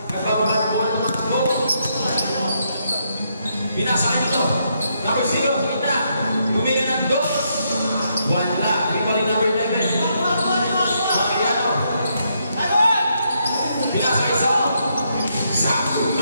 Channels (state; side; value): inverted; both; correlation -0.77